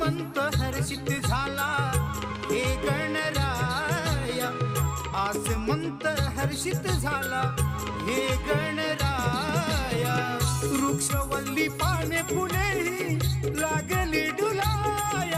हर्षित झाला हे गणराया आसमंत हर्षित झाला हे गणराया वृक्षवल्ली पाने फुले लागली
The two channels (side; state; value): both; identical; correlation 1.00